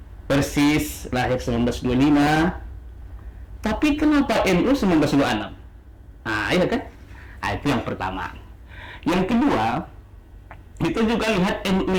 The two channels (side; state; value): both; identical; correlation 1.00